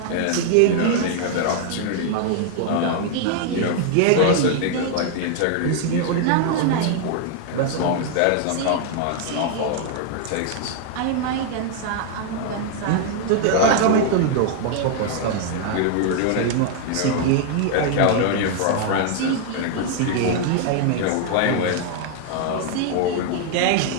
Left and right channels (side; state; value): both; different; correlation 0.00